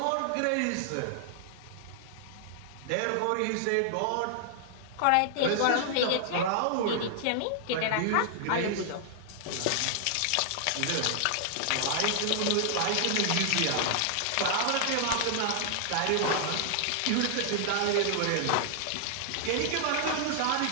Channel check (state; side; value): different; both; correlation -0.01